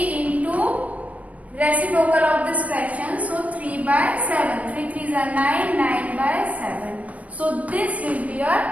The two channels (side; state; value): left; late; 0.069 ms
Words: reciprocal of this fraction. So 3 by 7. 3 3s are 9. 9 by 7. So this will be your